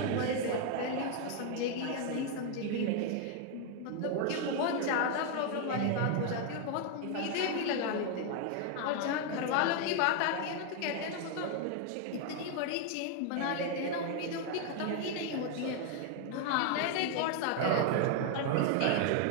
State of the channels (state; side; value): different; both; correlation 0.01